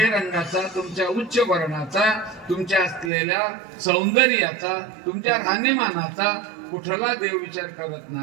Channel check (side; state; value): left; drops out; at 3.1 s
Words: तुमच्या उच्च वर्णाचा, तुमच्या असलेल्या सौंदर्याचा, तुमच्या राहणीमानाचा कुठला देव विचार करत